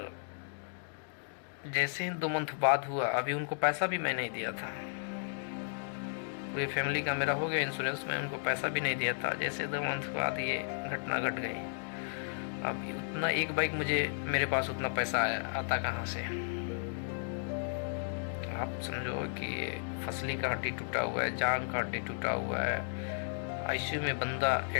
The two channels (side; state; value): right; silent; digital silence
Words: जैसे ही 2 मंथ बाद हुआ, अभी उनको पैसा भी मैं नहीं दिया था, पूरी फैमिली का मेरा हो गया इंश्योरेंस, में उनको पैसा भी नहीं दिया था। जैसे 2 मंथ बाद ये घटना घट गई। अब उतना एक बाइक मेरे पास उतना पैसा आता कहाँ से? आप समझो कि फसली का हड्डी टूटा हुआ है, जांग का हड्डी टूटा हुआ है, ICU में बंदा